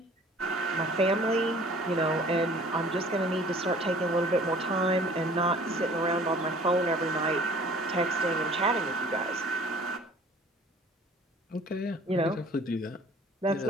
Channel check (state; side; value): normal; both; correlation 0.51